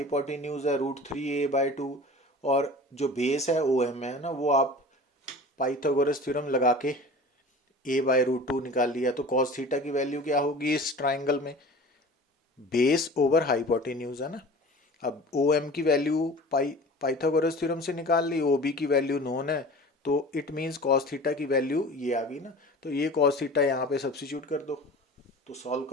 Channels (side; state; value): both; normal; correlation 0.39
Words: है √3a/2, और जो बेस है ओ एम है ना, वो आप पाइथागोरस थ्योरम लगा के a/√2 निकाल लिया। तो कॉस थीटा की वैल्यू क्या होगी इस ट्राइंगल में, बेस ओवर हाइपोटेन्यूज है ना। अब ओ एम की वैल्यू पाइथागोरस थ्योरम से निकाल ली, ओ बी की वैल्यू नोन है, तो इट मीन्स कॉस थीटा की वैल्यू ये आ गई ना। तो ये कॉस थीटा यहाँ पे सब्सिट्यूट कर दो, तो सॉल्व